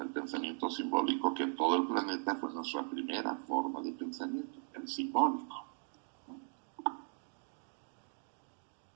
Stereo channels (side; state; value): left; silent; 52 dB below the other